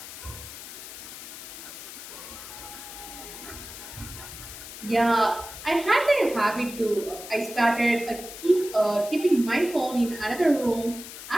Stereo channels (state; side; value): noise; left; hiss, 12 dB below the sound